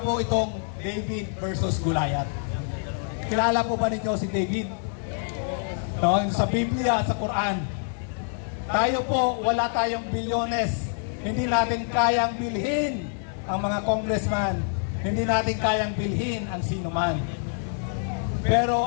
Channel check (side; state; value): right; silent; 61 dB below the other